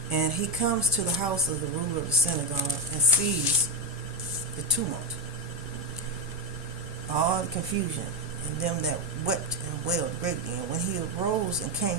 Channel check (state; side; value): normal; both; correlation 0.08